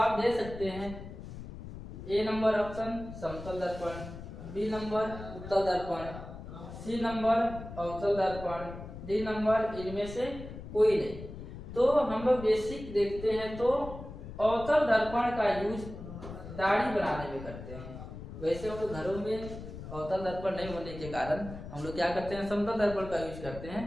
दे सकते हैं। ए नंबर ऑप्शन समतल दर्पण, बी नंबर उत्तल दर्पण, सी नंबर अवतल दर्पण, डी नंबर इनमें से कोई नहीं। तो हम लोग बेसिक देखते हैं तो अवतल दर्पण का यूज दाढ़ी बनाने में करते हैं। वैसे हम लोग घरों में अवतल दर्पण नहीं होने के कारण हम लोग क्या करते हैं, समतल दर्पण का यूज करते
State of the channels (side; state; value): left; noise; rumble, 11 dB below the sound